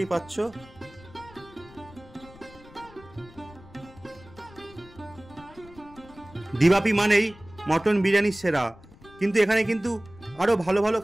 পাচ্ছ। দিবাপি মানেই মটন বিরিয়ানি সেরা। কিন্তু এখানে কিন্তু আরও ভালো ভালো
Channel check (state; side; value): noise; left; rumble, 22 dB below the sound